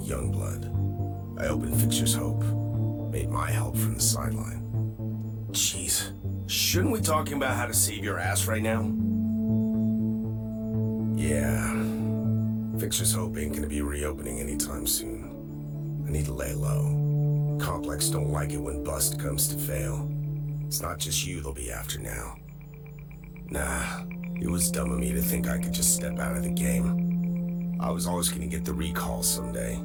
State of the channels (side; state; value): both; identical; correlation 1.00